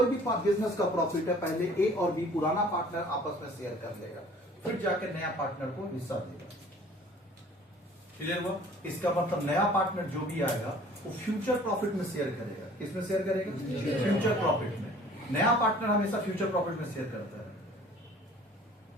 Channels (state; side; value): normal; both; correlation 0.51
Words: भी बिजनेस का प्रॉफिट है पहले ए और बी पुराना पार्टनर आपस में शेयर कर लेगा, फिर जाकर नया पार्टनर को हिस्सा देगा। क्लियर हुआ? इसका मतलब नया पार्टनर जो भी आएगा वो फ्यूचर प्रॉफिट में शेयर करेगा। किसमें शेयर करेगा? फ्यूचर प्रॉफिट में। नया पार्टनर हमेशा फ्यूचर प्रॉफिट में शेयर करता है।